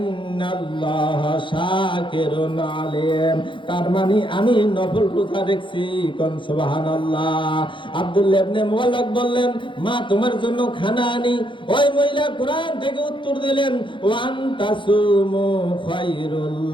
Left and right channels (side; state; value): right; late; 0.24 ms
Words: শাকিরুন আলিম, তার মানে আমি নফল রোজা রেখেছি। কোন সুবহানাল্লাহ। আব্দুল্লাহ ইবনে মুবারক বললেন মা তোমার জন্য খানা আনি? ওই মহিলা কোরআন থেকে উত্তর দিলেন ওয়ান তাসুমু খায়রুল